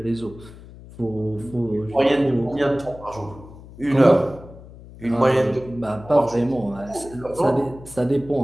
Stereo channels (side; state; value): left; noise; hum, 18 dB below the sound